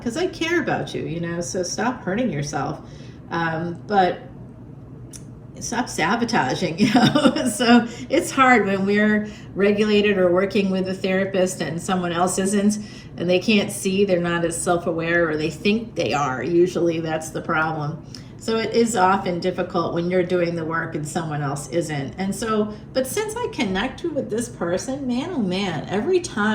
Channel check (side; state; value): both; identical; correlation 1.00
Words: I care about you, so stop hurting yourself. But stop sabotaging, So it's hard when we're regulated or working with a therapist and someone else isn't, and they can't see, they're not as self-aware, or they think they are. Usually that's the problem. So it is often difficult when you're doing the work and someone else isn't. And so, but since I connected with this person, man, oh man, every